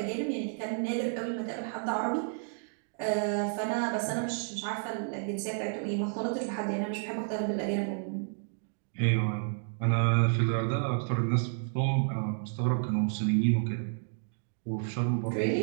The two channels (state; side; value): silent; left; 57 dB below the other